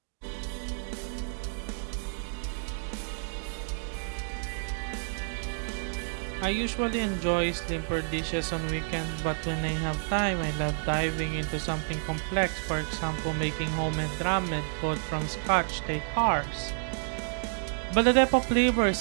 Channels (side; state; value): left; silent; digital silence